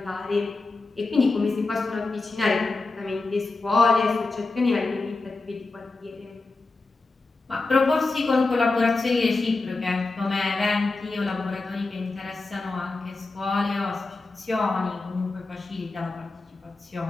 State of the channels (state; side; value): quieter; right; 3.6 dB